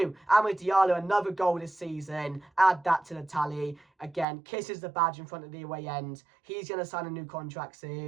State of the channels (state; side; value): drops out; left; at 4.2 s